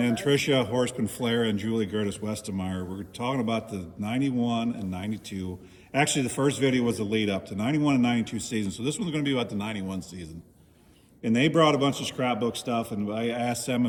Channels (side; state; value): both; identical; correlation 1.00